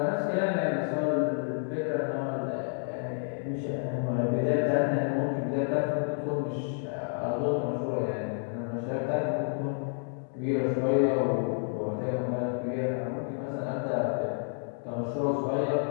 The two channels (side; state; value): right; silent; digital silence